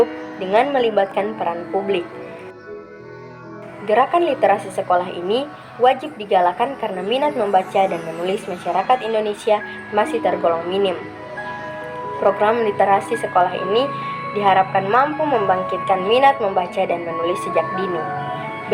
dengan melibatkan peran publik. Gerakan literasi sekolah ini wajib digalakan karena minat membaca dan menulis masyarakat Indonesia masih tergolong minim. Program literasi sekolah ini diharapkan mampu membangkitkan minat membaca dan menulis sejak dini.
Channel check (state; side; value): identical; both; correlation 1.00